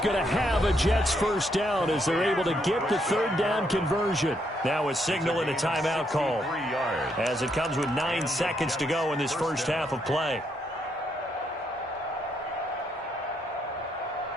to have a Jets first down as they're able to get the 3rd down conversion. Now a signal and a timeout call as it comes with 9 seconds to go in this first half of play.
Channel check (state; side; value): normal; both; correlation 0.76